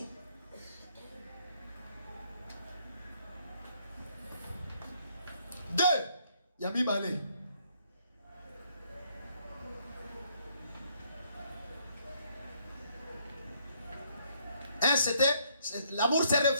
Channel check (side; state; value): both; inverted; correlation -0.69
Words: Deux. Ya mibale. Un, c'était l'amour se